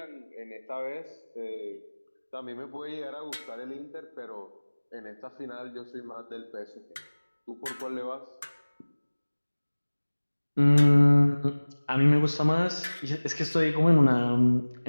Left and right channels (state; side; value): inverted; both; correlation -1.00